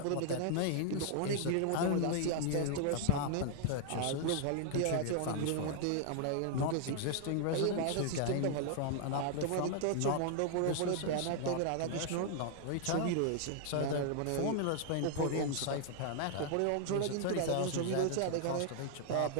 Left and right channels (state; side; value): different; both; correlation -0.01